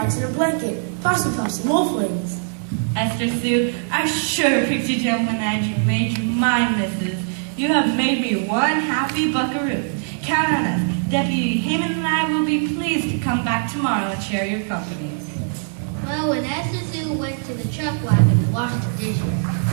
and a blanket, possum puffs and wolf wings. Esther Sue, I sure picked you gentleman and you made you my missus. You have made me one happy buckaroo. Count on us. Deputy Haman and I will be pleased to come back tomorrow and share your company. well, when Esther Sue went to the truck wagon to wash the dishes,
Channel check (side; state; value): left; silent; digital silence